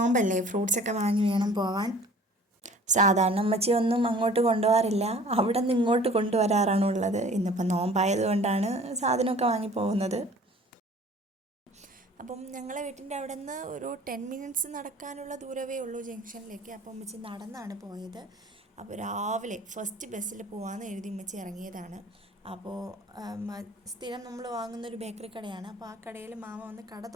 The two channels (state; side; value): normal; both; correlation 0.49